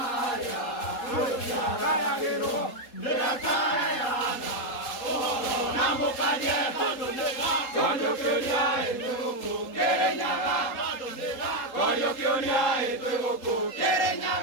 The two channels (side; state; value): right; late; 3.8 ms